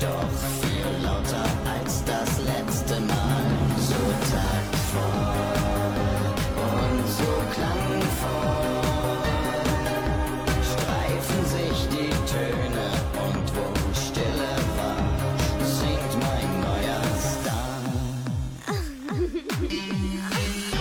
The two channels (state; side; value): identical; both; correlation 1.00